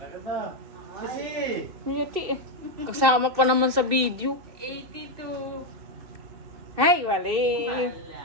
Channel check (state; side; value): late; left; 2.7 ms